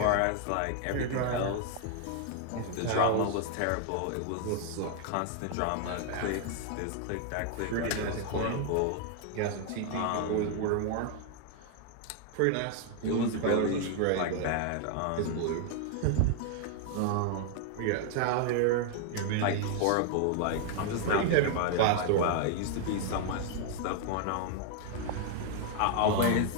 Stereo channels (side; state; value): both; different; correlation 0.00